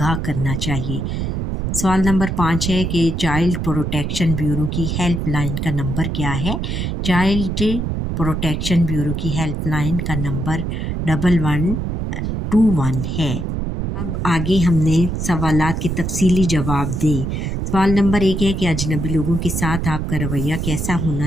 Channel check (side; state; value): right; noise; rumble, 2 dB below the sound